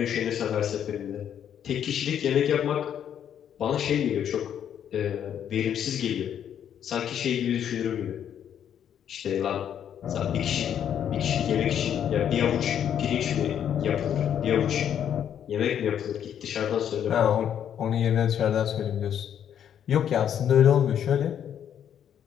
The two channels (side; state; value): right; quieter; 9.3 dB